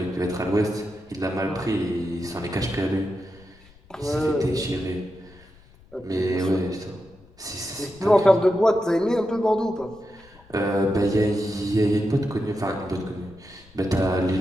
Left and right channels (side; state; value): left; noise; rumble, 26 dB below the sound